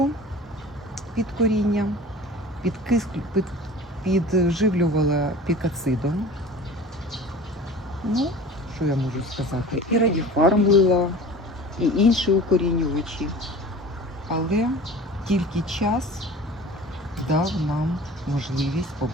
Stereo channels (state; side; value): normal; both; correlation 0.40